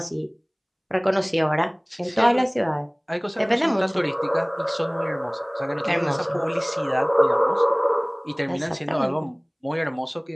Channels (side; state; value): both; identical; correlation 1.00